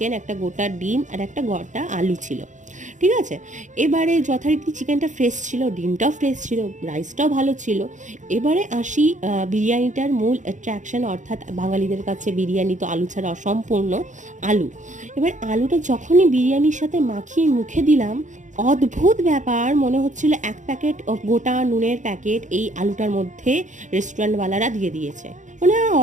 একটা গোটা ডিম আর একটা গোটা আলু ছিল, ঠিক আছে। এবারে যথারীতি চিকেনটা ফ্রেশ ছিল, ডিমটাও ফ্রেশ ছিল, রাইসটাও ভালো ছিল। এবারে আসি বিরিয়ানিটার মূল অ্যাট্রাকশন, অর্থাৎ বাঙালিদের কাছে বিরিয়ানি তো আলু ছাড়া অসম্পূর্ণ, আলু। এবার আলুটা যখনই বিরিয়ানির সাথে মাখিয়ে মুখে দিলাম, অদ্ভুত ব্যাপার, মনে হচ্ছিল এক প্যাকেট গোটা নুনের প্যাকেট এই আলুটার মধ্যে রেস্টুরেন্টওয়ালারা দিয়ে দিয়েছে। মানে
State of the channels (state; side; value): late; left; 0.36 ms